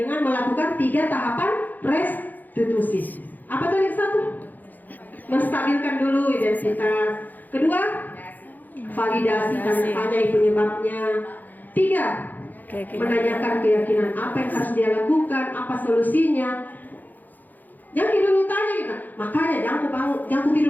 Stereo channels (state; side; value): late; right; 0.084 ms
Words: melakukan 3 tahapan restitusi. Apa tadi satu? Menstabilkan dulu identitas. Kedua, validasi tanya penyebabnya. 3, menanyakan keyakinan apa yang harus dia lakukan, apa solusinya. Jangan dulu tanya kita. Makanya jangan ku